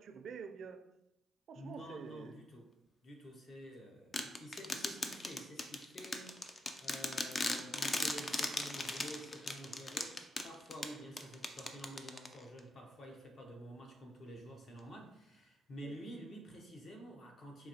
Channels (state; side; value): normal; both; correlation 0.84